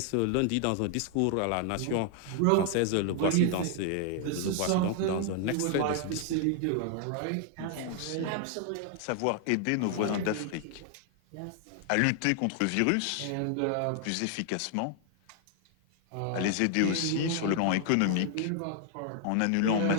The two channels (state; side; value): different; both; correlation 0.00